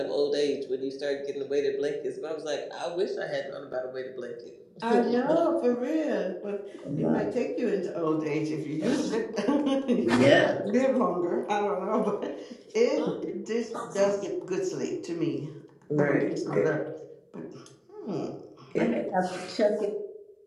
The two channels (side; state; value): both; identical; correlation 1.00